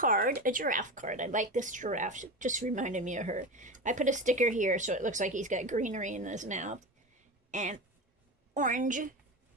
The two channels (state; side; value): normal; both; correlation 0.24